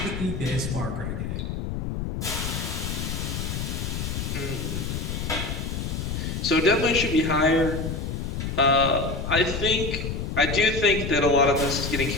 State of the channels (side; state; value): left; noise; rumble, 3 dB below the sound